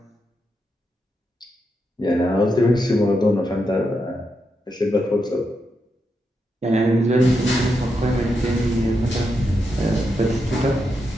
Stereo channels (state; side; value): normal; both; correlation 0.84